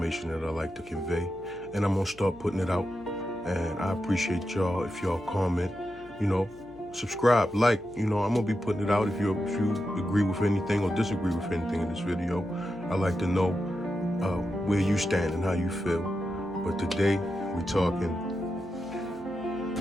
that I like to convey, and I'm gonna start putting it out. And I appreciate y'all if y'all comment, subscribe, like, I'm gonna be putting it out. If you agree with anything or disagree with anything in this video, I like to know where you stand and how you feel. But today we're talking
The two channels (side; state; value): left; noise; hum, 23 dB below the sound